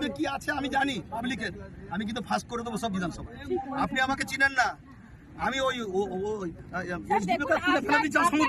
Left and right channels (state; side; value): identical; both; correlation 1.00